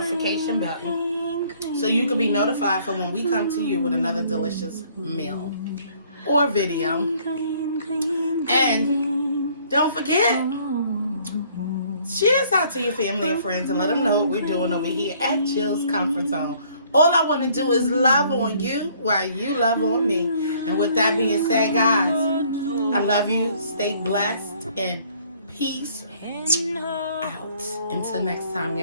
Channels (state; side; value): inverted; both; correlation -0.60